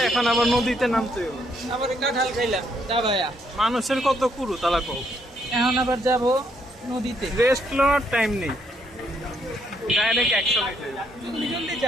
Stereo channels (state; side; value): normal; both; correlation 0.72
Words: এখন আবার নদীতে নামতে হবে। আবার কাঁঠাল খাইলাম দাবায়া। মানুষের কত কুরু তালা কও। এখন আবার যাব নদীতে। রেস্ট নেওয়ার টাইম নেই, ডাইরেক্ট অ্যাকশন। জলদি জলদি